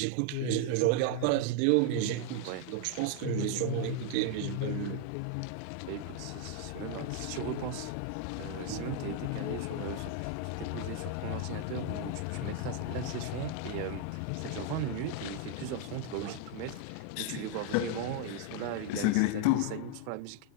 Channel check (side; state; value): both; different; correlation 0.00